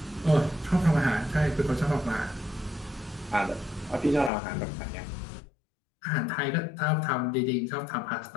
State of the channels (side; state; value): right; drops out; at 4.3 s